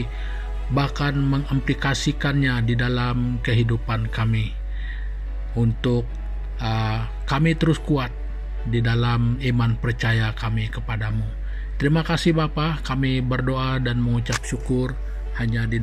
bahkan mengimplikasikannya di dalam kehidupan kami untuk kami terus kuat di dalam iman percaya kami kepadamu. Terima kasih Bapa, kami berdoa dan mengucap syukur hanya di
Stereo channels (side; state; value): both; identical; correlation 1.00